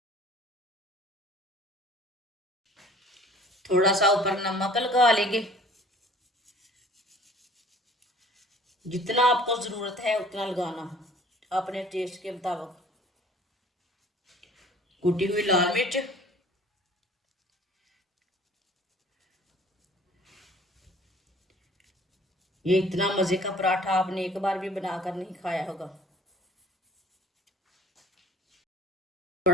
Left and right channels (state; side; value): normal; both; correlation 0.51